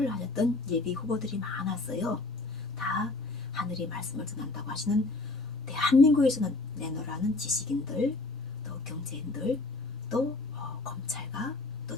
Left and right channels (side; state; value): right; quieter; 3.3 dB